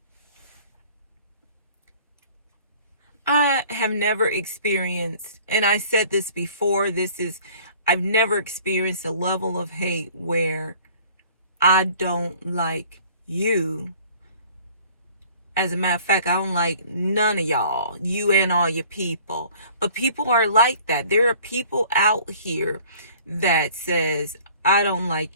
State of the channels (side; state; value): both; inverted; correlation -0.51